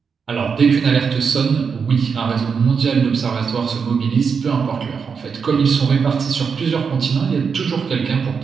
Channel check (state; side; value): quieter; left; 6.0 dB